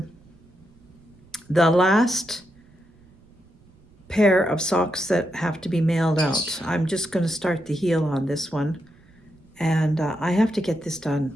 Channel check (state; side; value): noise; right; rumble, 28 dB below the sound